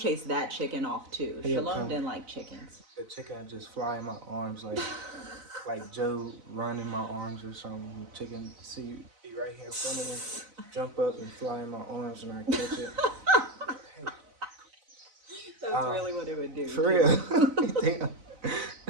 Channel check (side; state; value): left; late; 4.0 ms